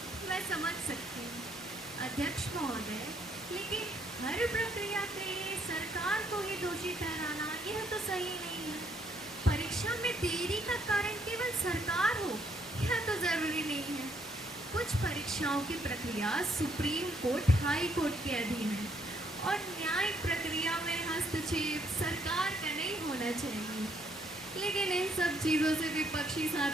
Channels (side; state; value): both; normal; correlation 0.71